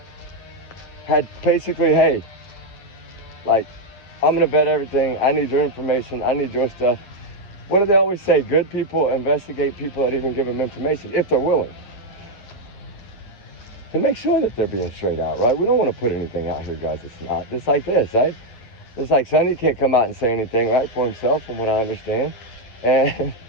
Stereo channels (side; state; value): right; late; 9.4 ms